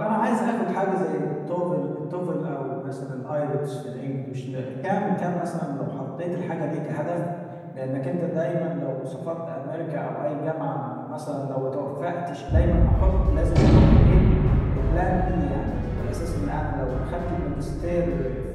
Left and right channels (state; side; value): identical; both; correlation 1.00